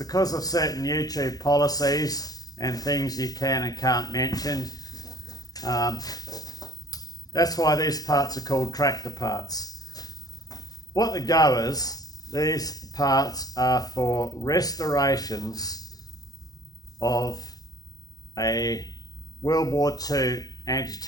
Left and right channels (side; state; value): right; late; 0.18 ms